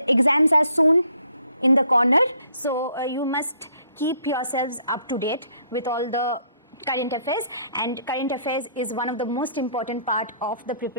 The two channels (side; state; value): both; inverted; correlation -0.65